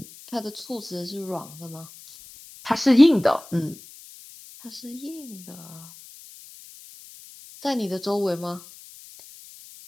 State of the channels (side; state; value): left; noise; hiss, 19 dB below the sound